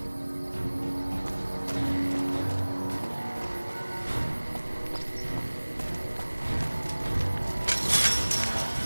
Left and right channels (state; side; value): inverted; both; correlation -1.00